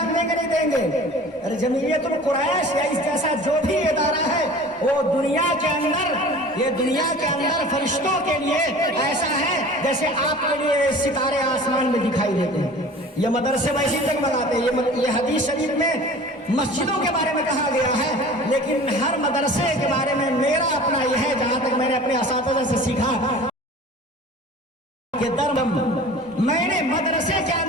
دیں گے نہیں دیں گے؟ ارے جمعیت القریش یا اس جیسا جو بھی ادارہ ہے وہ دنیا کے اندر، یہ دنیا کے اندر فرشتوں کے لیے ایسا ہے جیسے آپ کے لیے ستارے آسمان میں دکھائی دیتے ہیں۔ یہ مدرسے ویسے جگمگاتے ہیں۔ یہ حدیث شریف میں مسجدوں کے بارے میں کہا گیا ہے، لیکن ہر مدرسے کے بارے میں میرا اپنا یہ ہے، جہاں تک میں نے اپنے اساتذہ سے سیکھا کہ میں نے مدرسے کے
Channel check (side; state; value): both; normal; correlation 0.42